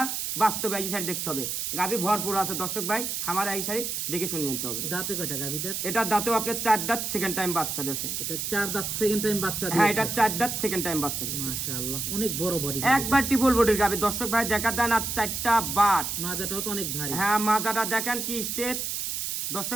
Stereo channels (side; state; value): right; noise; hiss, 2 dB below the sound